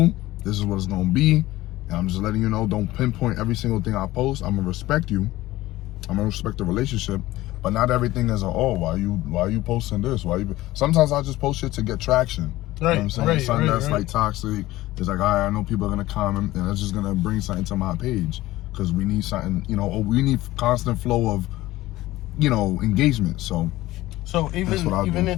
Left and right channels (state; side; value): quieter; right; 17.1 dB